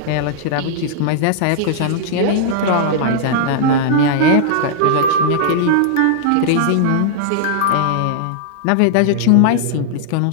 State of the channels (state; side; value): different; both; correlation -0.01